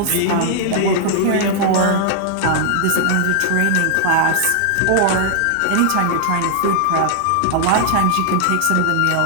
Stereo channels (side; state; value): both; different; correlation 0.00